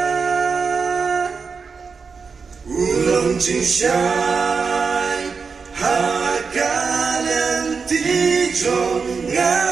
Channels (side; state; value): left; quieter; 5.2 dB